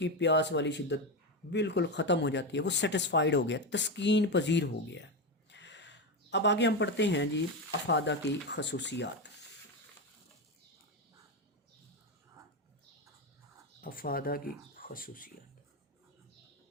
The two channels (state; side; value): normal; both; correlation 0.13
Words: پیاس والی شدت بالکل ختم ہو جاتی ہے، وہ سیٹسفائیڈ ہو گیا، تسکین پذیر ہو گیا ہے۔ اب آگے ہم پڑھتے ہیں جی افادہ کی خصوصیات۔ افادہ کی خصوصیات،